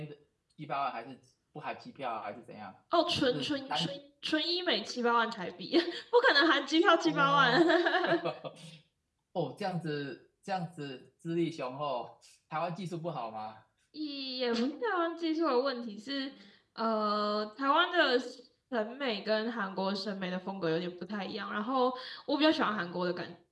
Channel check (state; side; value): identical; both; correlation 1.00